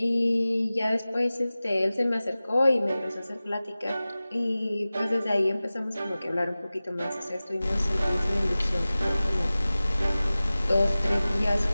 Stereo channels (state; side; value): inverted; both; correlation -0.97